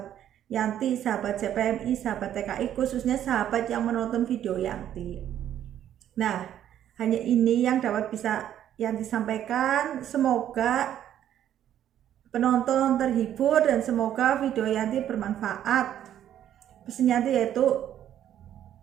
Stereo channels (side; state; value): left; quieter; 10.9 dB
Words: Yanti, sahabat CPMI, sahabat TKI, khususnya sahabat yang menonton video Yanti. Nah, hanya ini yang dapat bisa Yanti sampaikan. Semoga penonton terhibur dan semoga video Yanti bermanfaat. Pesan Yanti yaitu